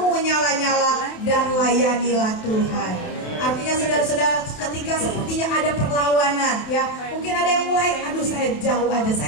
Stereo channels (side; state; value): right; late; 28 ms